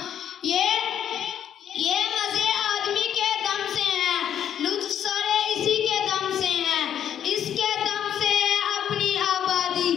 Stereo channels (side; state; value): right; quieter; 9.6 dB